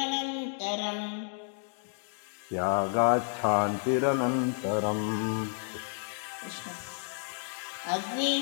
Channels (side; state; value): right; silent; 57 dB below the other